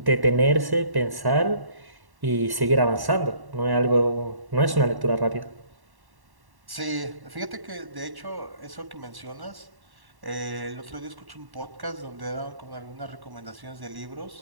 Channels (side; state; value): left; late; 1.1 ms